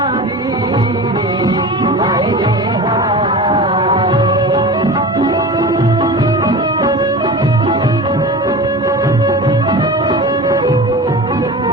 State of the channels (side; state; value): both; normal; correlation 0.33